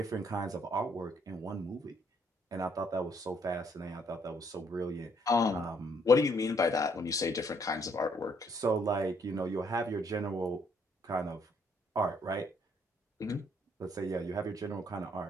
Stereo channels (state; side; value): normal; both; correlation 0.68